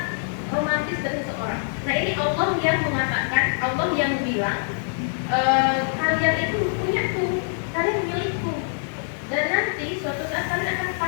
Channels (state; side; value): silent; right; 62 dB below the other